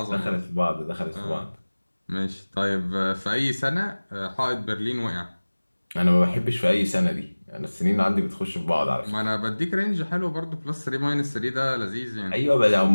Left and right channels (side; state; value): both; inverted; correlation -1.00